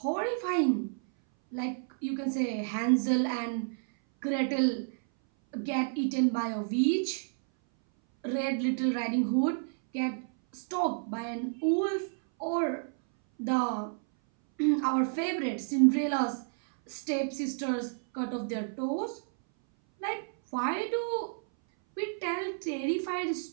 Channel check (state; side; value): silent; left; 57 dB below the other